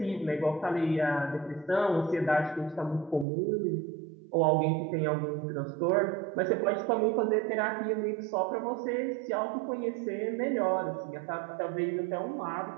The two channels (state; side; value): drops out; left; at 3.2 s